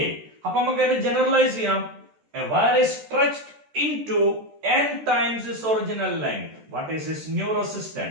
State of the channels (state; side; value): late; left; 13 ms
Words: അപ്പൊ നമുക്ക് അതിനെ ജനറലൈസ് ചെയ്യാം. A wire is stretched into n times its original length. What is its new